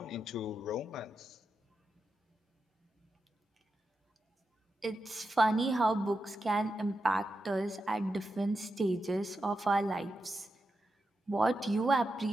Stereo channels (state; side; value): normal; both; correlation 0.88